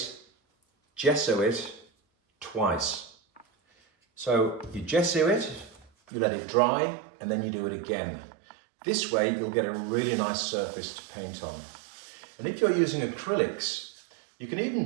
gesso it twice. So you gesso it, you let it dry, and then you do it again. This way you'll get a really nice surface to paint on. And if you're using acrylics, you can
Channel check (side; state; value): left; drops out; at 5.9 s